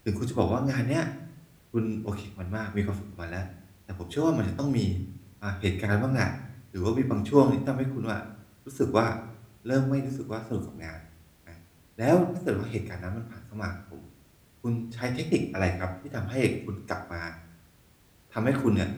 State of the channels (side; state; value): both; identical; correlation 1.00